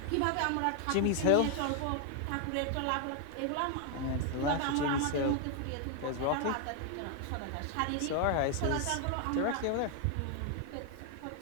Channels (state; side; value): different; both; correlation 0.00